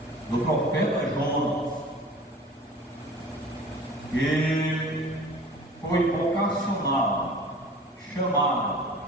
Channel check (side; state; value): both; normal; correlation 0.43